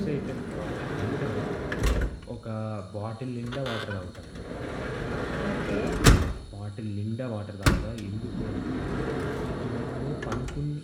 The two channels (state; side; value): identical; both; correlation 1.00